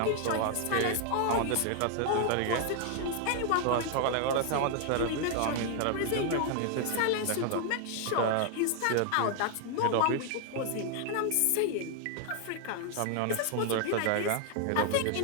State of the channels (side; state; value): both; different; correlation 0.00